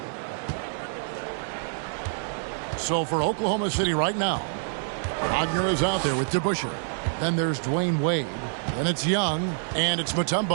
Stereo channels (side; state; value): left; silent; 60 dB below the other